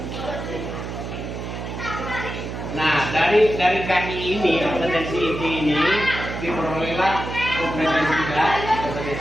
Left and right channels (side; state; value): right; noise; hum, 7 dB below the sound